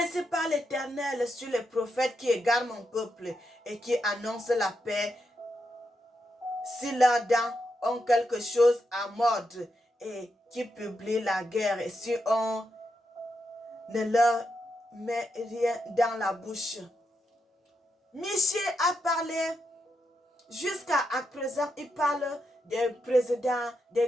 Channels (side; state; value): both; normal; correlation 0.84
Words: parle l'Éternel sur les prophètes qui égarent mon peuple et qui annoncent la paix. Si leurs dents ont quelque chose à mordre et qui publient la guerre, et si on ne leur met rien dans la bouche. Michée a parlé, jusqu'à présent, il parle des présidents,